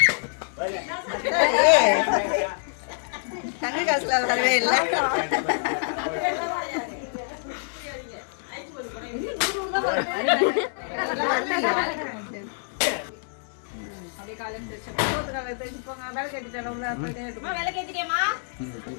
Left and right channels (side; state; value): right; silent; 61 dB below the other